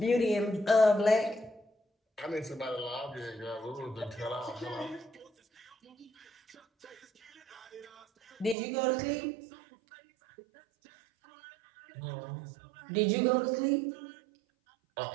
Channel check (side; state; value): left; drops out; at 8.6 s